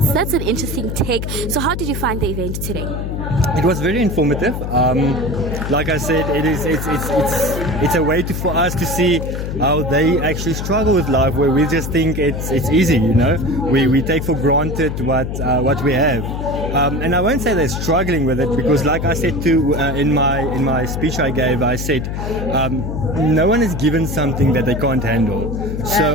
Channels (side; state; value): left; noise; hum, 4 dB below the sound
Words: that's an interesting take. So how did you find the event today? It was very informative. Like I said, it's a way for us to see how they actually struggle with life, where we just think it's easy, you know. We take for granted what we have, and I won't say they're struggling with it, because like I said too in my speech I gave, I said no one is given something that they can't handle.